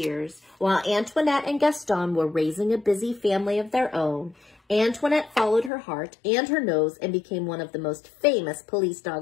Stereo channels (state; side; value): drops out; right; at 5.7 s